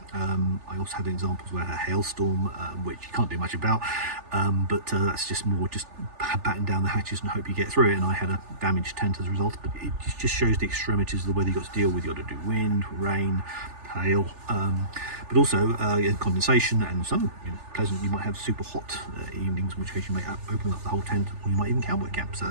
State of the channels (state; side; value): late; left; 3.4 ms